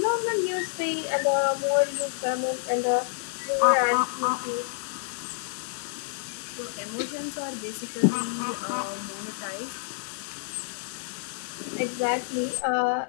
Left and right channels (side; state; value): right; silent; 59 dB below the other